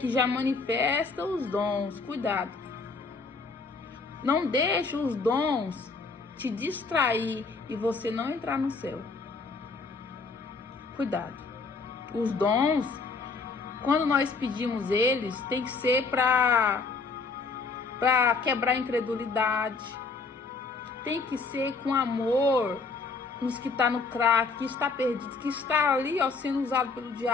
já manifesta os dons, cuidado. Não deixe os dons te distrair e você não entrar no céu. Cuidado. Os dons, quando nós pedimos eles, tem que ser para quebrar a incredulidade. Tem que ser com amor nos que está no crack, que está perdido, que está ali, ó, sendo usado pelo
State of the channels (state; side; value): quieter; right; 4.3 dB